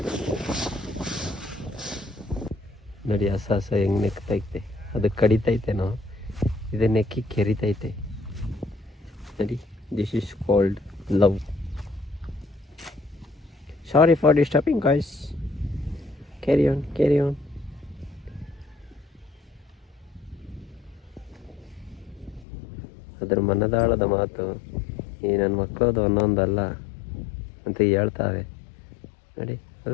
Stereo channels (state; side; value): drops out; right; at 22.5 s